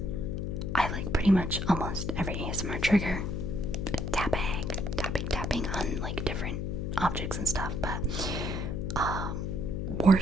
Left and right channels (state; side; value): noise; left; hum, 2 dB below the sound